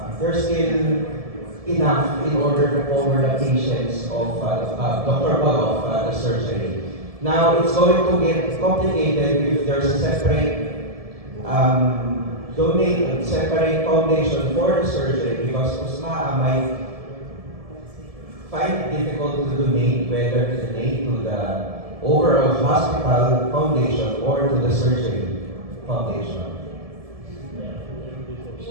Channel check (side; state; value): left; late; 1.7 ms